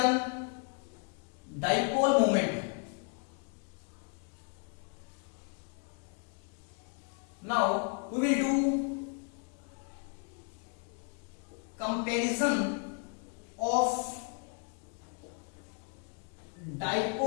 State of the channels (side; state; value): right; quieter; 39.0 dB